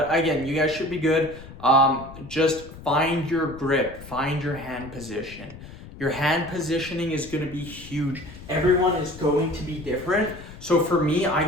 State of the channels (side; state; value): left; noise; rumble, 16 dB below the sound